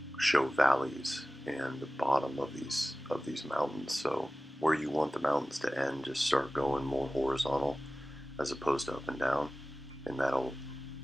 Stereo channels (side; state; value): both; normal; correlation 0.97